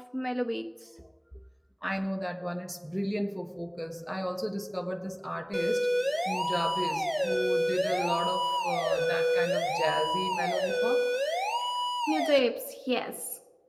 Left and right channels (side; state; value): both; identical; correlation 1.00